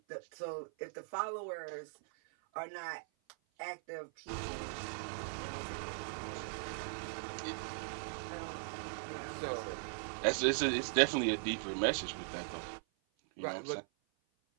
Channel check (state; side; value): silent; left; 51 dB below the other